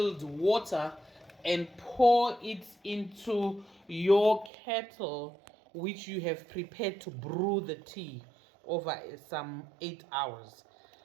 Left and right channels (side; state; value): left; drops out; at 4.5 s